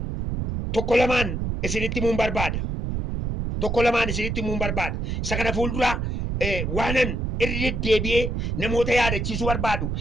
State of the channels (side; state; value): right; noise; rumble, 2 dB below the sound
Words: tokko lamaan isinitti himuun barbaada. Isa kana fuuldura waanan irra deebi'ee namoota yaadachiisuu barbaadu